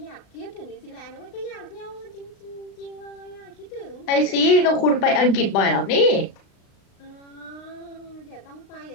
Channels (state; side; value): late; right; 36 ms